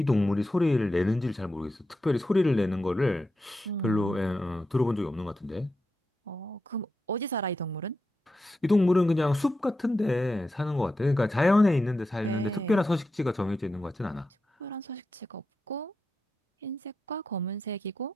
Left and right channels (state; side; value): normal; both; correlation 0.88